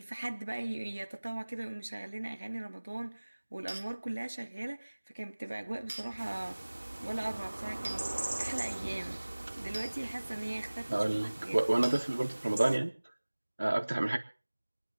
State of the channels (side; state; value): both; inverted; correlation -1.00